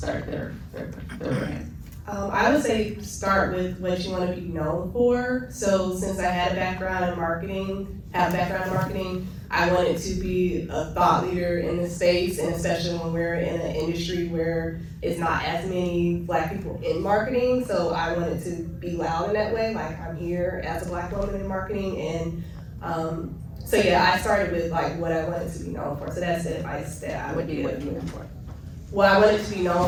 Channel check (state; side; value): identical; both; correlation 1.00